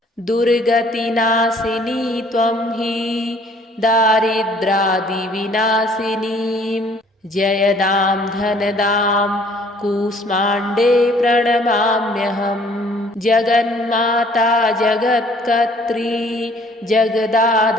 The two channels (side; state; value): both; normal; correlation 0.58